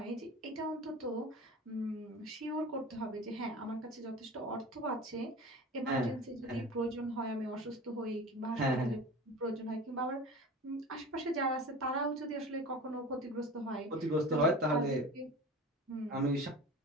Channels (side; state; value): both; normal; correlation 0.35